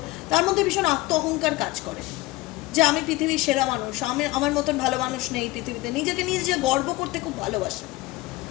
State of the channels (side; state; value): right; quieter; 20.1 dB